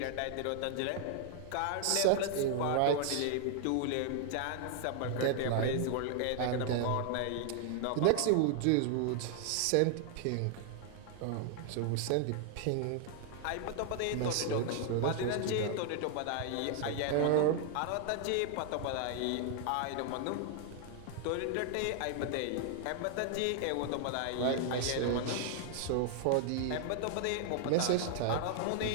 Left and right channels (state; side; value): different; both; correlation 0.00